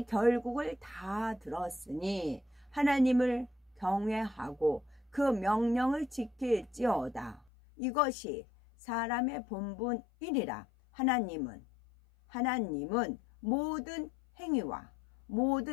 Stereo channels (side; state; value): right; drops out; at 7.5 s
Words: 결국을 다 들었으니 하나님을 경외하고 그 명령을 지킬지어다. 이것이 사람의 본분이니라. 하나님은 모든 행위와